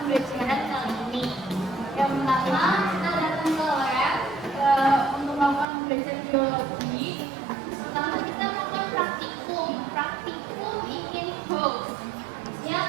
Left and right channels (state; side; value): drops out; left; at 5.7 s